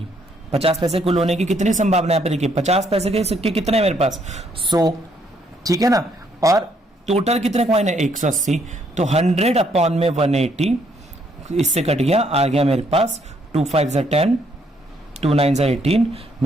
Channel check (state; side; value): normal; both; correlation 0.70